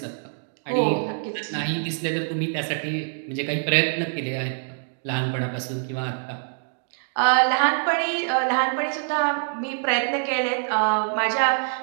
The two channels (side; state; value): left; silent; 61 dB below the other